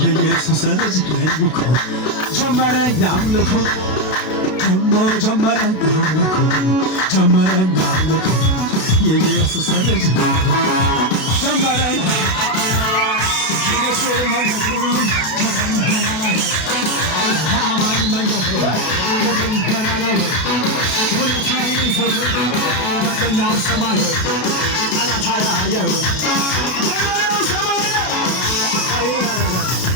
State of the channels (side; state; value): right; late; 32 ms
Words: የኢየሱስ ልጅ ነኝ እኮ ጀመረኝ አምልኮ ደሞ ጀመረኝ አምልኮ ጀመረኝ አምልኮ የኢየሱስ ልጅ ነኝ ጀመረኝ የኢየሱስ መንገዱ ከደመና ላይ ከአማን መንገዱ ከደመና ላይ ሁኔታዬን ሰው በቀኛው ሰማይ ጠላት አያየው